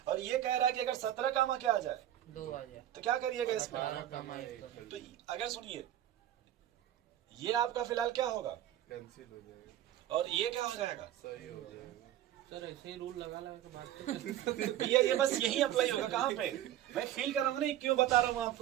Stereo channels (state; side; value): quieter; left; 12.4 dB